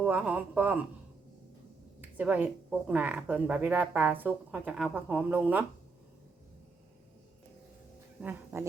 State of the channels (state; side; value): quieter; left; 4.3 dB